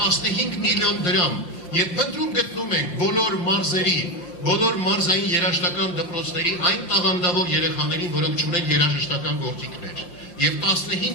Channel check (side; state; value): right; late; 5.7 ms